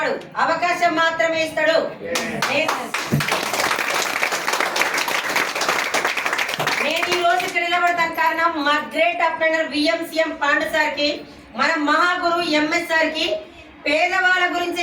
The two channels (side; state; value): both; identical; correlation 1.00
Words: అవకాశం మాత్రమే ఇస్తాడు. నేను ఈ రోజు ఇక్కడ నిలబడతాను కారణం మా గ్రేట్ అప్లైనర్ విఎంసీఎం పాండు సార్కి, మన మహాగురు ఎంఎస్ సార్కి, పేదవాళ్ళ గురించి